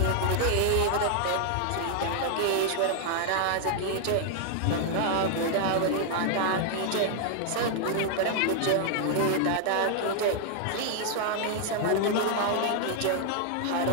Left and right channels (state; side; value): different; both; correlation 0.00